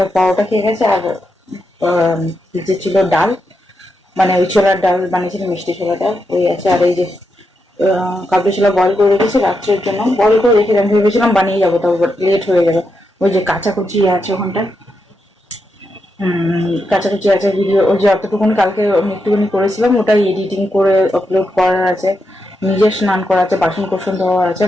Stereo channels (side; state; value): both; normal; correlation 0.84